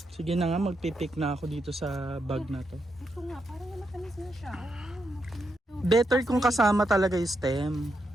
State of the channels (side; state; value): both; normal; correlation 0.82